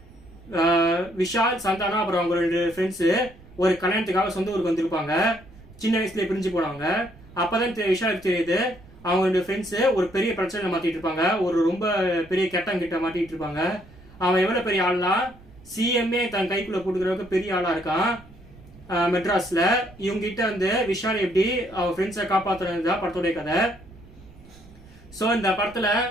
விஷால் சந்தானம் அப்புறம் அவங்க ரெண்டு ஃப்ரெண்ட்ஸ் ஒரு கல்யாணத்துக்காக சொந்த ஊருக்கு வந்திருப்பாங்க. சின்ன வயசுல பிரிஞ்சு போனவங்க. அப்பதான் விஷாலுக்கு தெரியுது அவங்க ரெண்டு ஃப்ரெண்ட்ஸ் ஒரு பெரிய பிரச்சனை மாட்டிட்டு இருப்பாங்க. ஒரு ரொம்ப பெரிய கெட்ட மாட்டிட்டு இருப்பாங்க. அவன் எவ்வளவு பெரிய ஆள்னா சிஎம்ஏ தன் கைக்குள்ள போட்டுக்கிறவங்க பெரிய ஆளா இருக்கான் மெட்ராஸ்ல. இவங்க கிட்ட வந்து விஷால் எப்படி அவன் ஃப்ரெண்ட்ஸை காப்பாற்றுறதுதான் படத்தோடைய கதை. ஸோ இந்த படத்துல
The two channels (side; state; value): right; noise; rumble, 22 dB below the sound